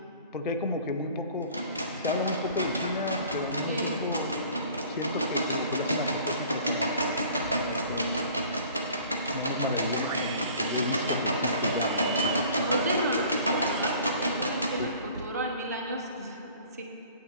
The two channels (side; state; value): both; inverted; correlation -0.50